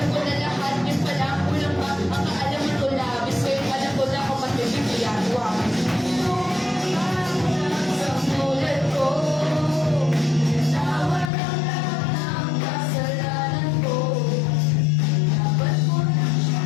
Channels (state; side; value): drops out; right; at 11.3 s